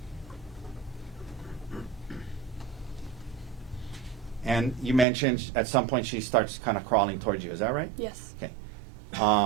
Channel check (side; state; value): left; drops out; at 5.1 s